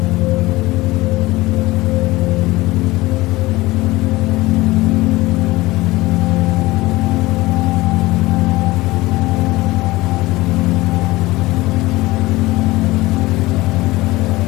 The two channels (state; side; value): quieter; right; 19.6 dB